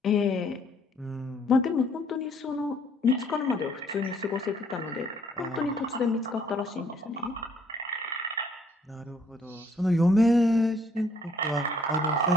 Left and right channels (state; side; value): normal; both; correlation 0.64